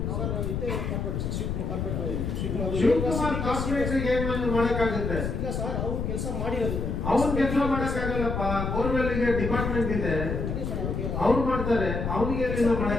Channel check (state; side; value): noise; left; rumble, 2 dB below the sound